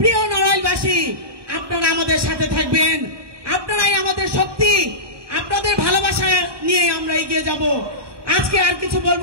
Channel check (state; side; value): late; left; 1.2 ms